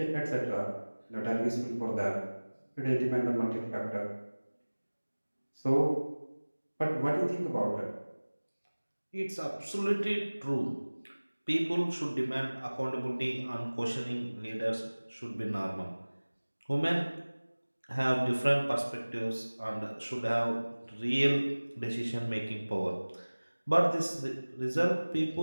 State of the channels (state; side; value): inverted; both; correlation -1.00